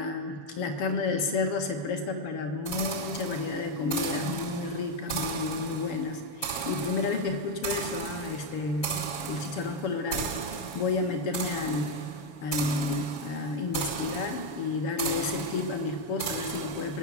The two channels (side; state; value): right; late; 7.1 ms